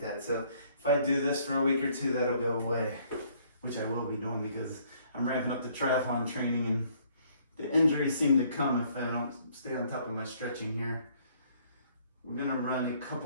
that. So if I do this for a week or two, that'll go away, which I will be doing because I'm ramping up the triathlon training, and the injuries seem to come if I don't stay on top of my stretching here. We're gonna run a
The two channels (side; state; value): both; inverted; correlation -0.63